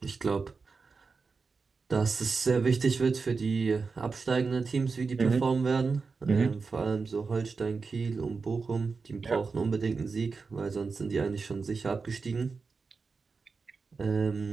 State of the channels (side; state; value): left; quieter; 4.6 dB